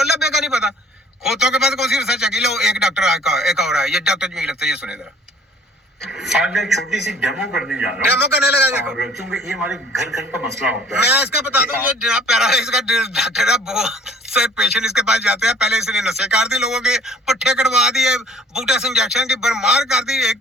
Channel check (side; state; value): both; normal; correlation 0.53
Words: बेका नहीं पता। खोतों के पास कौन सी रिसर्च आ गई? लो एक डॉक्टर एक और है, ये डॉक्टर जो लगता है, ये सुने जरा। आज मैं छोटी सी डेमो करने जा रहा हूँ। डेमो करने लगा देखो, क्योंकि ये हमारे घर घर का मसला होता है। मैं इसका बता दूं, ये जनाब पैरालाइज का डॉक्टर है, बहुत से पेशेंट इसके पास जाते हैं। पहले इसने नसें काट दी, लोगों के पट्टे कटवा दिए, बूटा से इंजेक्शन की बरमार कर दी,